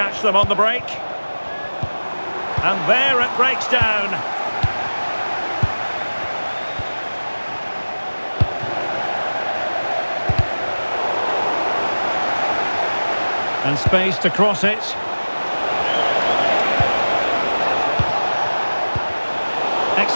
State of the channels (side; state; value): both; inverted; correlation -1.00